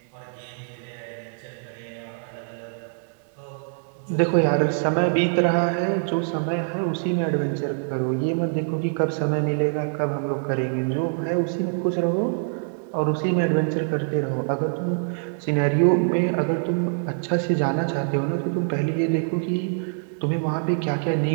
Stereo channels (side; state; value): left; silent; digital silence